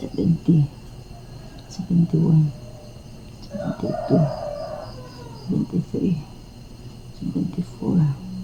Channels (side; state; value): both; identical; correlation 1.00